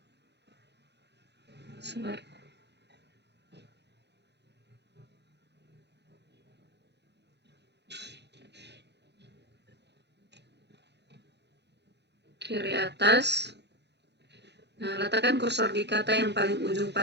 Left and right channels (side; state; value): left; late; 0.50 ms